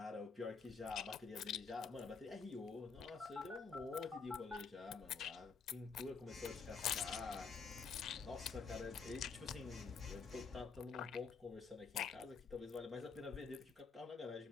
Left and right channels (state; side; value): quieter; right; 5.2 dB